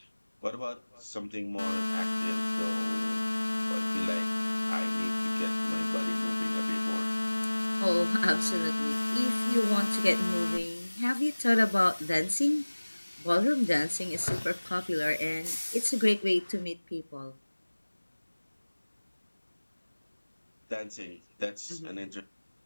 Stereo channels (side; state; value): both; inverted; correlation -1.00